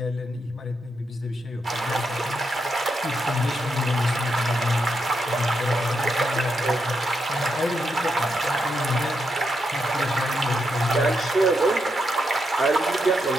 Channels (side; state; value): both; normal; correlation 0.82